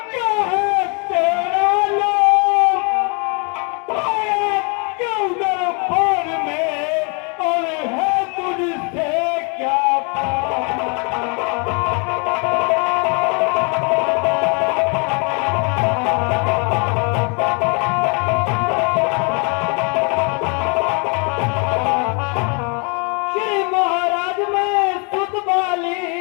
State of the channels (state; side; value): quieter; right; 34.4 dB